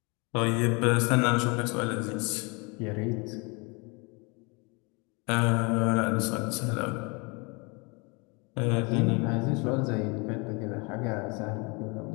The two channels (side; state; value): right; quieter; 29.7 dB